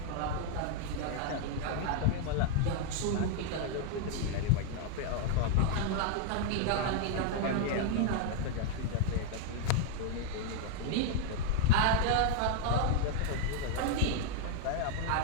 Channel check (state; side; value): different; both; correlation 0.00